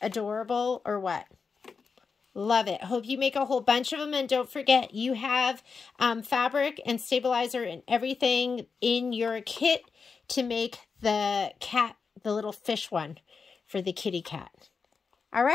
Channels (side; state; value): right; quieter; 5.2 dB